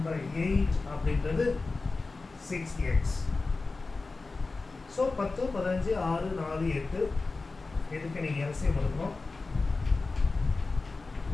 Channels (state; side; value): quieter; right; 3.7 dB